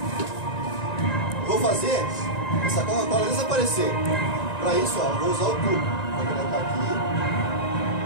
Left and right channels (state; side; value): late; right; 1.9 ms